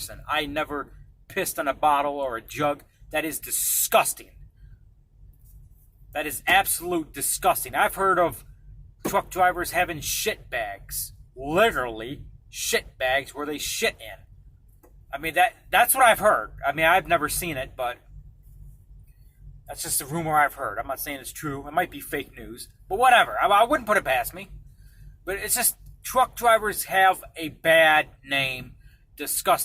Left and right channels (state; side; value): identical; both; correlation 1.00